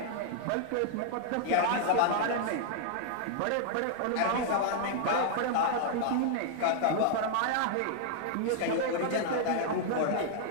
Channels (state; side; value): different; both; correlation -0.01